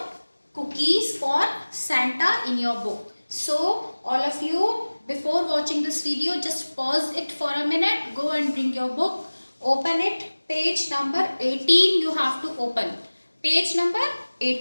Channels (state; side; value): inverted; both; correlation -1.00